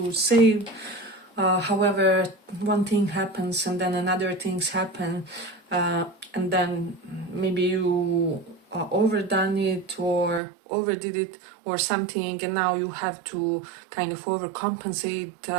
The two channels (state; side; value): drops out; left; at 10.4 s